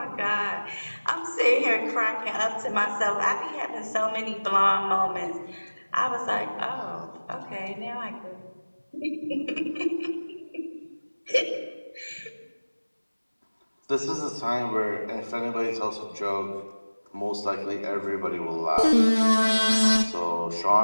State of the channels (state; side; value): inverted; both; correlation -1.00